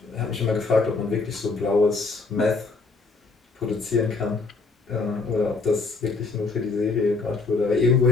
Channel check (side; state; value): right; quieter; 4.0 dB